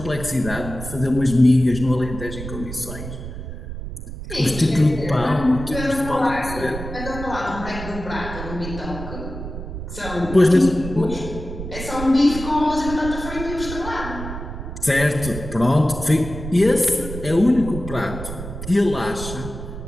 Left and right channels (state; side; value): noise; right; rumble, 9 dB below the sound